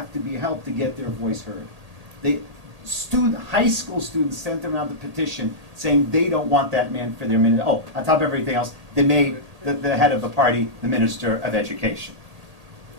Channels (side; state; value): left; late; 1.8 ms